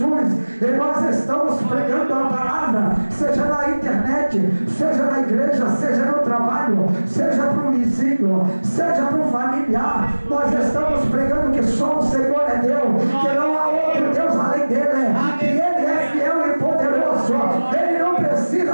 e nós estamos pregando a palavra, seja na internet, seja na igreja, seja no trabalho, seja para o vizinho, seja para o familiar. Nós estamos pregando que só o Senhor é Deus, que não há outro Deus além dele, que ele é fiel e poderoso, ele não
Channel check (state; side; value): inverted; both; correlation -1.00